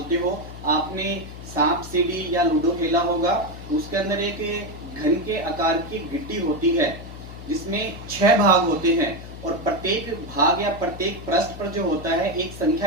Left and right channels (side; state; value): left; noise; hum, 13 dB below the sound